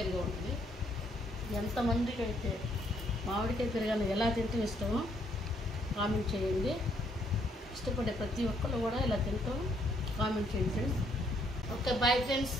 ఉంటుంది. ఎంతమందికి అయితే మామిడికాయ పెరుగన్నం ఎలా తింటే ఇష్టమో కామెంట్ చేయండి. ఇష్టపడే ప్రతి ఒక్కళ్ళు కూడా ఇలా తింటాం కామెంట్ చేయండి ఫ్రెండ్స్. Okay, bye friends.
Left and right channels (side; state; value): both; normal; correlation 0.70